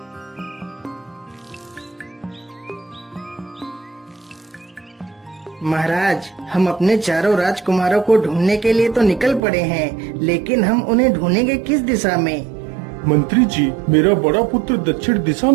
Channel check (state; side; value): drops out; left; at 9.4 s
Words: महाराज, हम अपने चारों राजकुमारों को ढूंढने के लिए तो निकल पड़े हैं, लेकिन हम उन्हें ढूंढेंगे किस दिशा में? मंत्री जी, मेरा बड़ा पुत्र दक्षिण दिशा